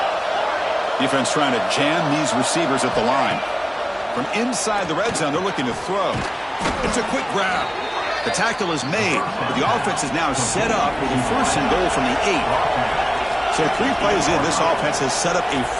Defense trying to jam these receivers at the line. From inside the red zone, they're looking to throw. It's a quick grab. The tackle is made, but the offense is now set up with a first and goal from the 8. So 3 plays in, this offense has set up a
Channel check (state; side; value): identical; both; correlation 1.00